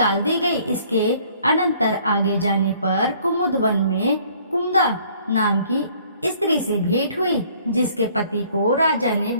दी गई। इसके अनंतर आगे जाने पर कुमुदवन में कुमुदा नाम की स्त्री से भेंट हुई, जिसके पति को राजा ने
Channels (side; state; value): both; inverted; correlation -0.58